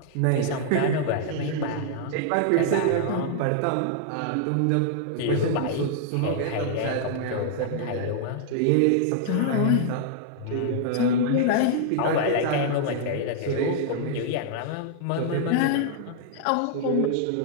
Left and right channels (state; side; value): different; both; correlation -0.01